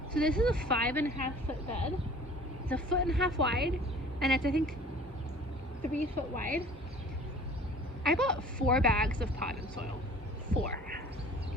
So this is a 5.5 foot bed. It's 1.5 foot wide, and it's I think 3 foot wide. I bought 4 bags of potting soil. 4.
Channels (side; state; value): both; normal; correlation 0.47